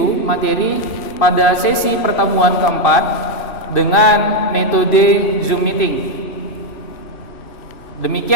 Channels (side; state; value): right; late; 3.1 ms